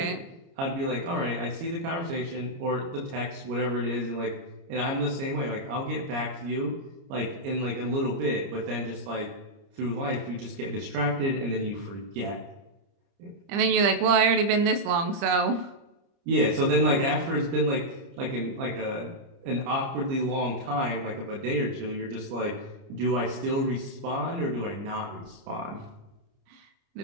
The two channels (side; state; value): left; late; 30 ms